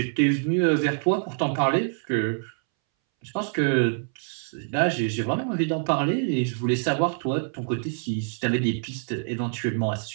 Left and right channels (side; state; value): left; silent; 61 dB below the other